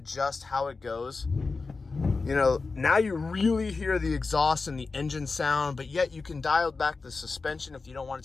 how it goes. You know, now you really hear the exhaust and the engine sound, but yet you can dial back the suspension if you don't want it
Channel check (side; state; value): right; quieter; 4.1 dB